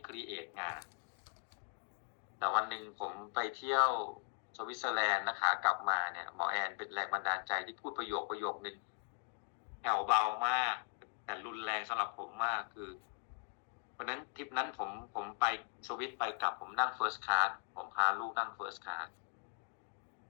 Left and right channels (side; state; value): right; silent; 52 dB below the other